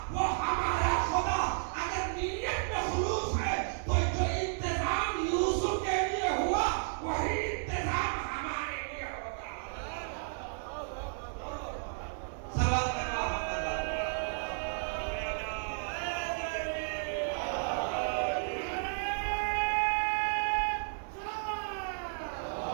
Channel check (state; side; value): silent; left; digital silence